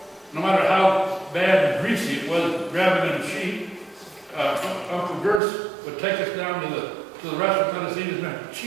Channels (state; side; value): drops out; left; at 5.4 s